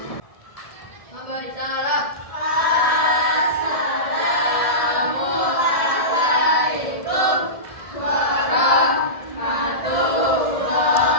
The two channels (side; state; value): right; late; 1.7 ms